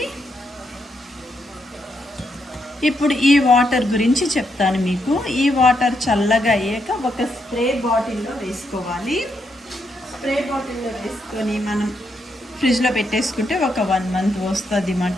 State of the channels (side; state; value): both; normal; correlation 0.79